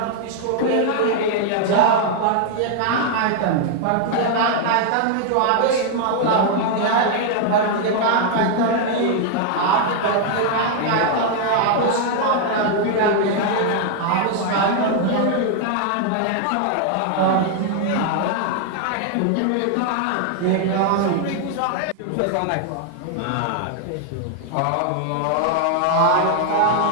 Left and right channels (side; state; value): both; different; correlation 0.00